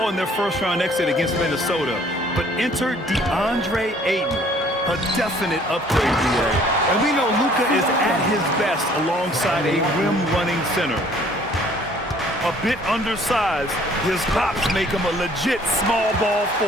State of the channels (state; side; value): normal; both; correlation 0.57